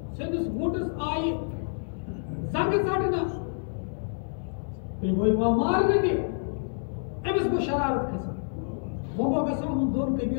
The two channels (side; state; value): right; silent; 59 dB below the other